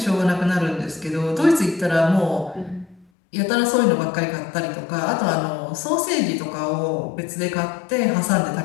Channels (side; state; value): right; drops out; at 3.1 s